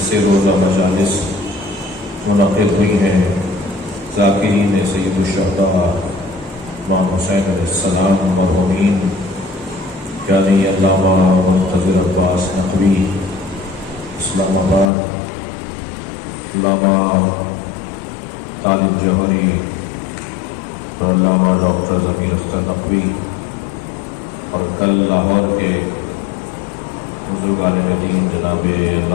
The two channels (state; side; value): drops out; right; at 14.9 s